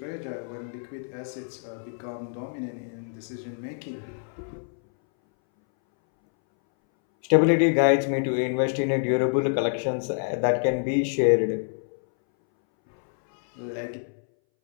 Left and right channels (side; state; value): right; silent; 61 dB below the other